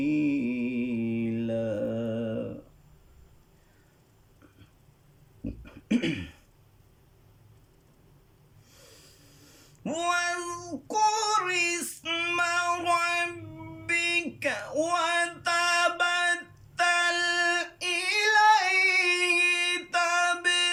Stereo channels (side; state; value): both; identical; correlation 1.00